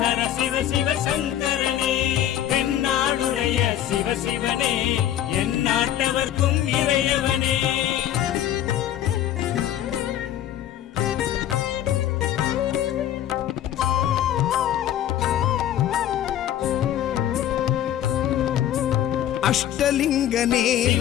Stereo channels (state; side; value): quieter; right; 11.5 dB